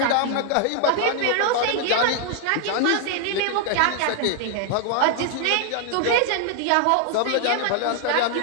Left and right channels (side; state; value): both; different; correlation 0.00